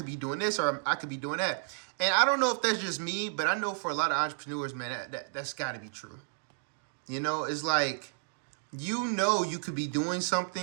be doing this, or I could be doing that. And I don't know if that's just me, but I know for a lot of entrepreneurs, man, that's got to be true. It's like, you could be doing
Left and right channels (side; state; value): left; silent; digital silence